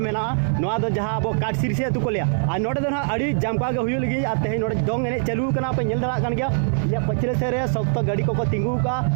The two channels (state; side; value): silent; left; 57 dB below the other